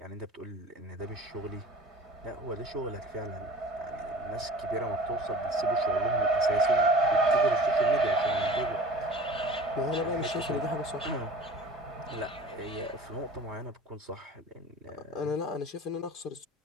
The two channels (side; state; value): both; normal; correlation 0.41